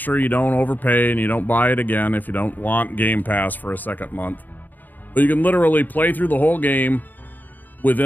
you don't overpay and you don't buy it again if you don't want Game Pass for a second month. But you can literally play through the whole game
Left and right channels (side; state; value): right; late; 0.085 ms